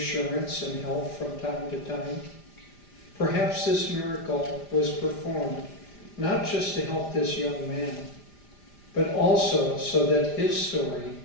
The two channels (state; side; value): late; right; 5.0 ms